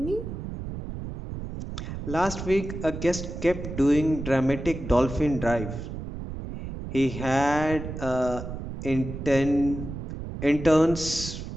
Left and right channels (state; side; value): noise; right; rumble, 8 dB below the sound